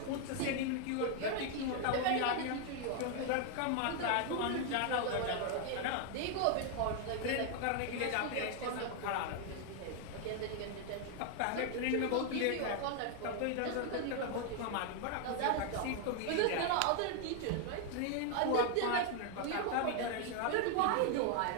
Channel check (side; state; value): both; different; correlation 0.00